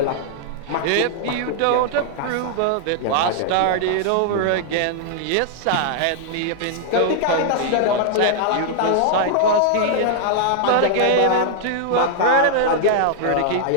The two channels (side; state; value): both; different; correlation -0.01